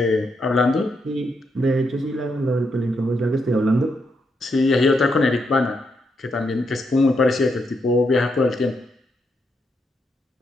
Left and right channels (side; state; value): both; normal; correlation 0.80